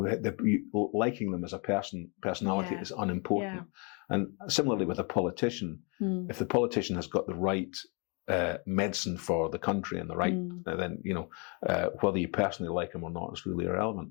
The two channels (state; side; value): quieter; right; 34.2 dB